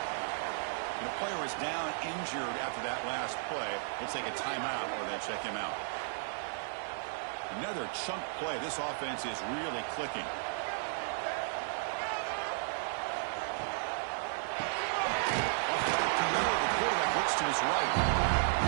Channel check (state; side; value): silent; left; 55 dB below the other